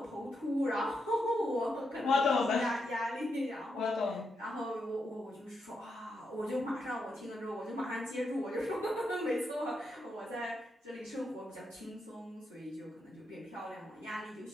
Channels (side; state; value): both; normal; correlation 0.83